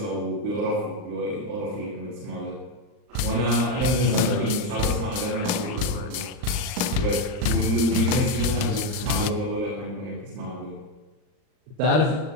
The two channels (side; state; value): left; late; 39 ms